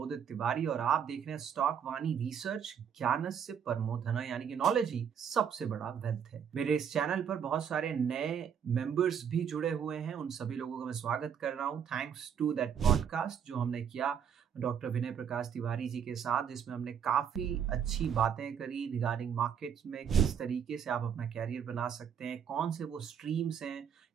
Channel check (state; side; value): quieter; left; 7.9 dB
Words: तिवारी और आप देख रहे हैं स्टॉक वाणी रिसर्च। ज्ञानस्य परमो धन, यानी कि नॉलेज ही सबसे बड़ा वेल्थ है। मेरे इस चैनल पर बहुत सारे नए मेंबर्स भी जुड़े हुए हैं, उन सभी लोगों का मैं स्वागत कर रहा हूं। थैंक्स टू दैट पॉडकास्ट जो हमने किया डॉक्टर विनय प्रकाश तिवारी जी के साथ, जिसमें हमने काफी अच्छी बातें करी रिगार्डिंग मार्केट्स में किस तरीके से आप अपना कैरियर बना सकते हैं, कौन से वो स्ट्रीम्स हैं,